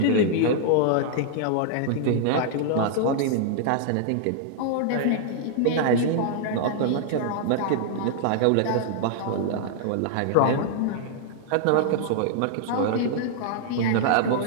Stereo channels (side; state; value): both; different; correlation -0.01